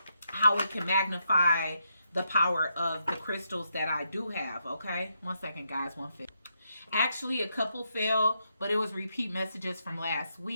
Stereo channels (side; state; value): both; inverted; correlation -0.81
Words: it can magnify the power of the crystals that I do have. Okay, 1 second guys, 1 5. Actually, a couple fell, but it was repeat messages from last